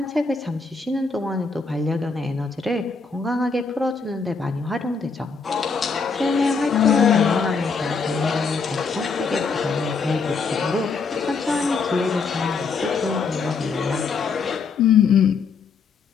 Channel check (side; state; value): right; quieter; 4.9 dB